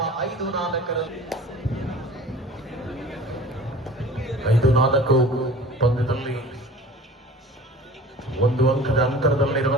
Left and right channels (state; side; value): normal; both; correlation 0.42